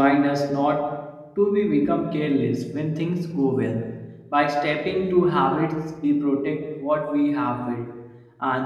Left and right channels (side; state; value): both; identical; correlation 1.00